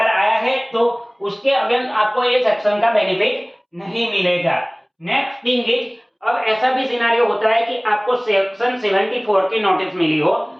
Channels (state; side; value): identical; both; correlation 1.00